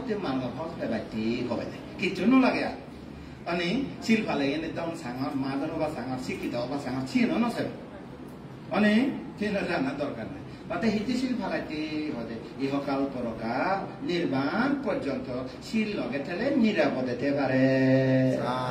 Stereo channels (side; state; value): both; identical; correlation 1.00